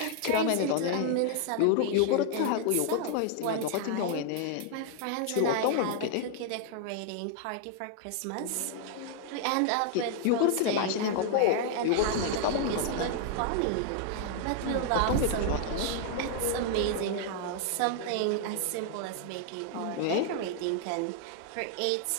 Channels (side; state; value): both; different; correlation 0.00